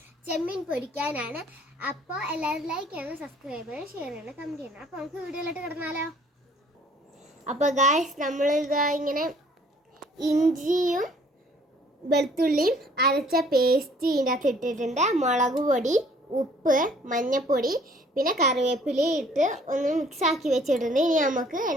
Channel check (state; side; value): normal; both; correlation 0.58